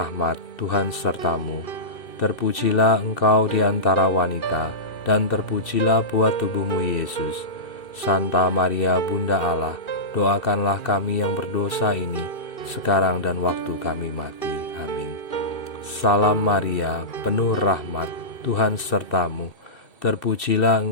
Tuhan serta-Mu. Terpujilah Engkau di antara wanita, dan terpujilah buah tubuh-Mu Yesus. Santa Maria Bunda Allah, doakanlah kami yang berdosa ini, sekarang dan waktu kami mati. Amin. Salam Maria, penuh rahmat, Tuhan serta-Mu. Terpujilah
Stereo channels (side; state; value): right; late; 2.4 ms